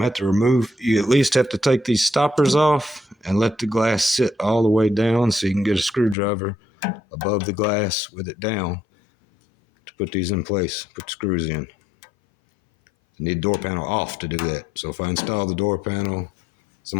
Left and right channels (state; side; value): drops out; right; at 6.2 s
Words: have to remove, you at least have to take these stoppers off and let the glass sit all the way down so you can get a screwdriver above the glass with it down to put these in place, put the screws in. You need the door panel off to do that. So if I install the door panel,